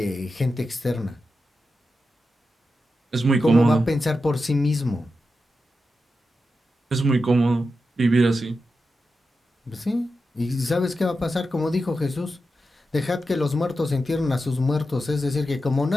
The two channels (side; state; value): both; normal; correlation 0.90